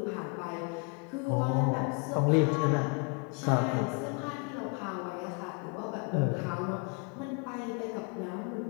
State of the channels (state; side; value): quieter; right; 35.2 dB